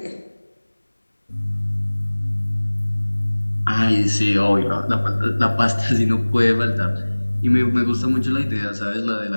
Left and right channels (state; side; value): inverted; both; correlation -1.00